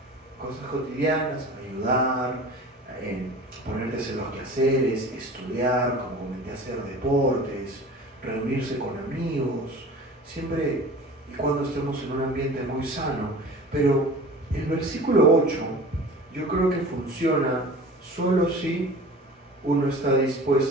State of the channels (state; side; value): normal; both; correlation 0.40